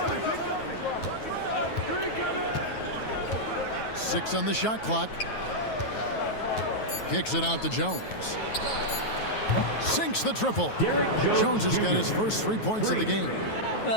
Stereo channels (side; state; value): right; late; 9.3 ms